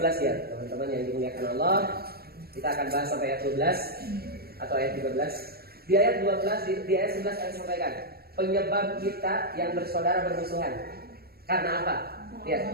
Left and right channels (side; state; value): left; late; 0.45 ms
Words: ya teman-teman yang dimuliakan Allah. Kita akan bahas sampai ayat 12 atau ayat 13. Di ayat 12 di ayat 11 saya sampaikan penyebab kita yang bersaudara bermusuhan. Karena apa? Ya.